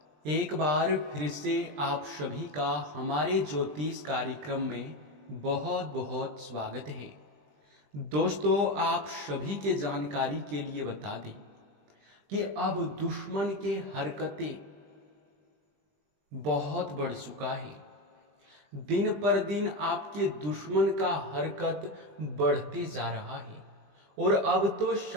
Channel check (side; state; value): left; late; 20 ms